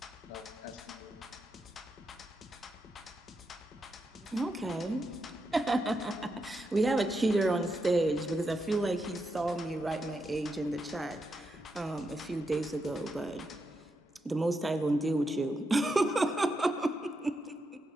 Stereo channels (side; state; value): both; normal; correlation 0.84